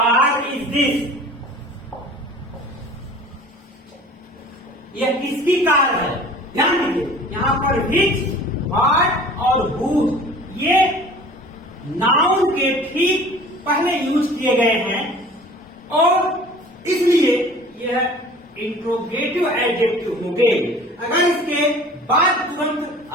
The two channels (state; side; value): normal; both; correlation 0.45